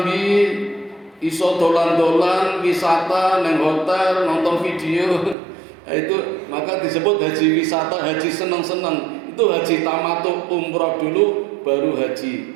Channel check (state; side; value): drops out; left; at 5.4 s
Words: iso dolan-dolan wisata neng hotel, nonton video. Nah, itu maka disebut haji wisata, haji seneng-seneng. Itu haji tamattu, umrah dulu baru haji.